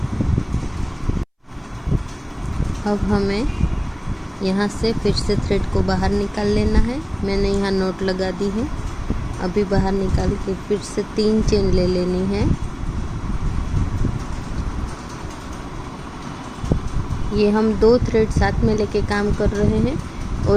अब हमें यहाँ से फिर से थ्रेड को बाहर निकाल लेना है। मैंने यहाँ नोट लगा दी है। अभी बाहर निकाल के फिर से 3 चेन ले लेनी है। ये हम 2 थ्रेड साथ में लेके काम कर रहे हैं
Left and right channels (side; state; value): both; identical; correlation 1.00